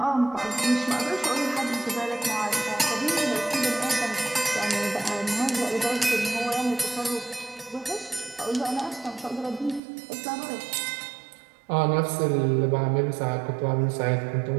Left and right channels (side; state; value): left; drops out; at 9.8 s